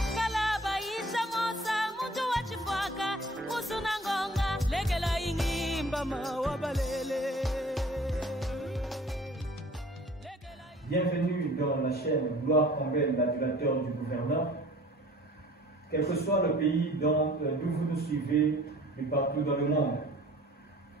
kala baisha mosa muntu wachifwaka musuna ngonga legela ingimba mawabalele. Bienvenue dans la chaîne Gloire Combel, l'adulateur du gouverneur. Quel que soit le pays d'où vous nous suivez et partout dans le monde.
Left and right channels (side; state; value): both; normal; correlation 0.50